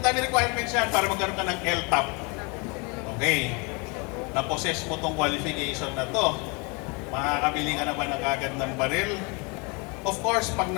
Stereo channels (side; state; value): right; quieter; 30.6 dB